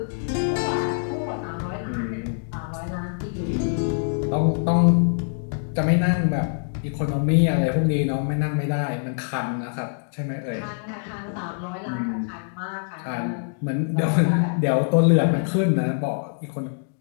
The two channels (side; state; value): right; silent; digital silence